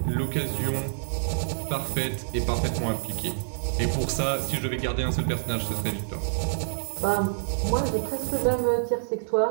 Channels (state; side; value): silent; left; digital silence